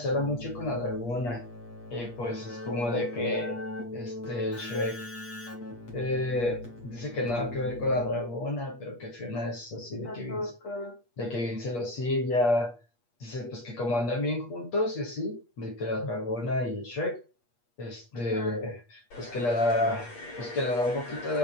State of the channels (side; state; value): right; late; 8.4 ms